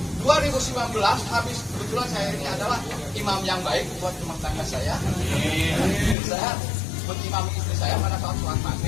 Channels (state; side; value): drops out; right; at 6.2 s